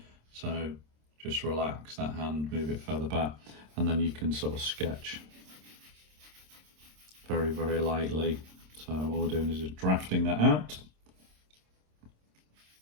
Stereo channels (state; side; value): late; left; 26 ms